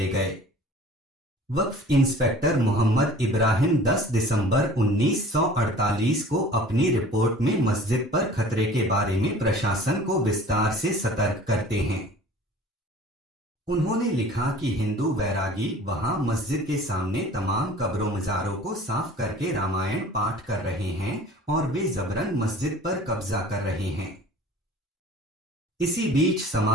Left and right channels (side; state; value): both; normal; correlation 0.46